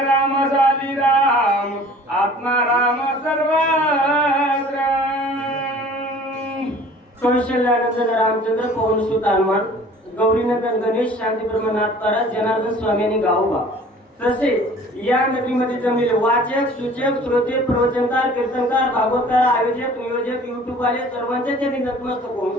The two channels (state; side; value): normal; both; correlation 0.49